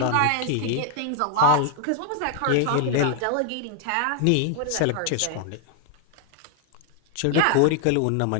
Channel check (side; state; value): both; different; correlation 0.00